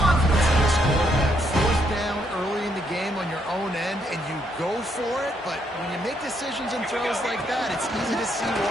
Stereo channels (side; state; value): both; normal; correlation 0.74